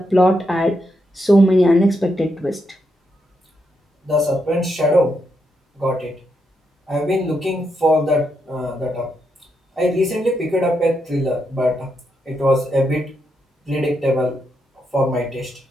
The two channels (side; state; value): both; normal; correlation 0.81